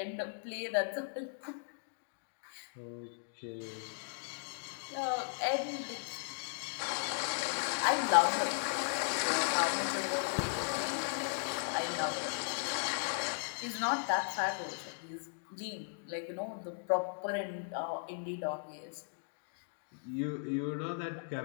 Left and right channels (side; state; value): right; silent; digital silence